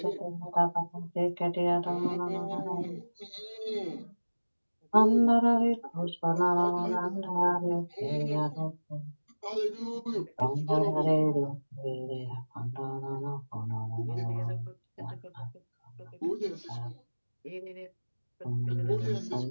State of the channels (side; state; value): both; inverted; correlation -1.00